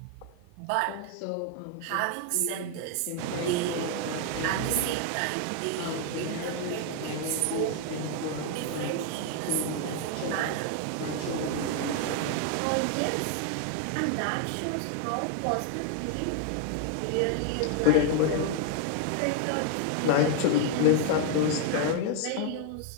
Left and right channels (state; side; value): different; both; correlation 0.00